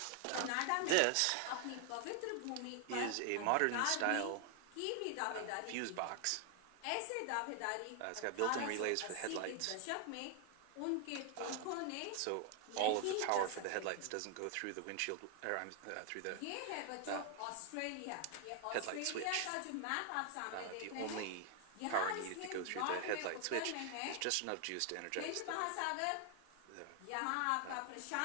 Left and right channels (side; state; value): both; different; correlation 0.00